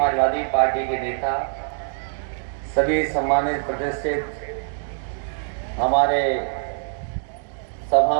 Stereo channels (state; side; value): silent; left; digital silence